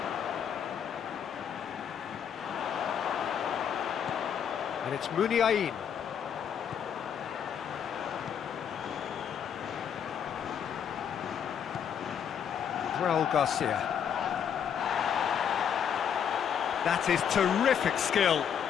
And it's Muniain. Raul Garcia. That is terrific skill.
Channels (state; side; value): quieter; right; 8.3 dB